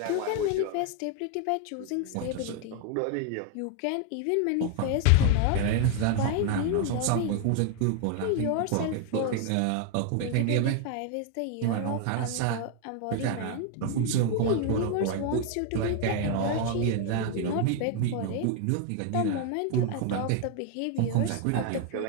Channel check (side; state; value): both; different; correlation 0.00